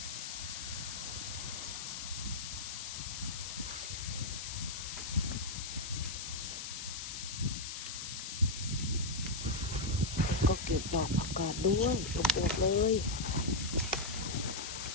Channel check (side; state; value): left; noise; hiss, 6 dB below the sound